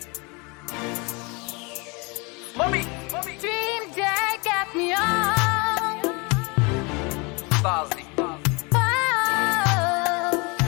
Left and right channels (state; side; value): quieter; right; 28.9 dB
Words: Mommy! Dream day got me on. Starzy. Oh,